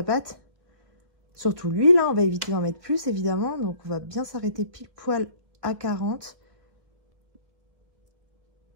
pâte. Surtout l'huile. Hein, on va éviter d'en mettre plus, évidemment. Donc, on va bien s'arrêter pile poil à 40.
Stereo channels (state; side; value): late; left; 1.5 ms